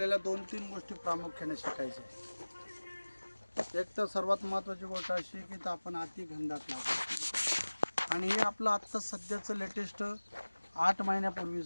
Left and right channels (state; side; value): inverted; both; correlation -1.00